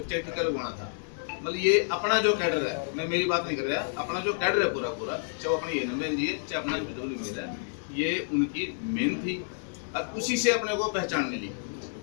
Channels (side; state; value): right; silent; digital silence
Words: टीका लगवाना था। मतलब ये अपना जो कैडर है, मैं मेरी बात नहीं कर रहा, अपना जो कैडर है पूरा चाहे वो अपनी एनबे जी है, चाहे अपना बिजौली मिल है, ये उनकी मेन थी और उसी से अपने को पहचान मिली।